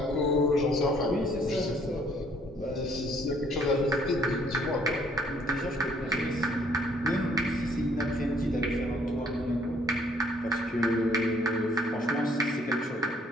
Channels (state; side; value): normal; both; correlation 0.63